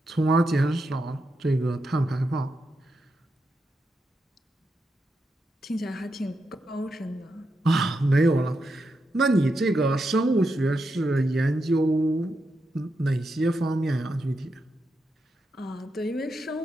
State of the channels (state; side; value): normal; both; correlation 0.85